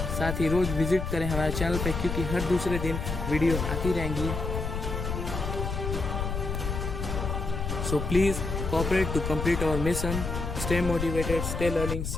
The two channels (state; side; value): noise; left; rumble, 3 dB below the sound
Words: साथ ही रोज विजिट करें हमारे चैनल पे, क्योंकि हर दूसरे दिन वीडियो आती रहेंगी। So please cooperate to complete our mission. Stay motivated, stay learning.